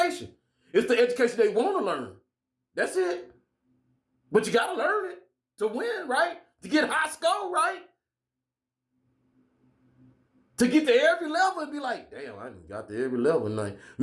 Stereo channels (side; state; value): both; identical; correlation 1.00